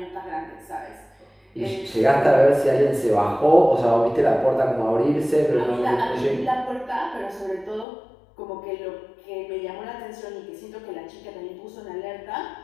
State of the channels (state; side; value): drops out; right; at 7.9 s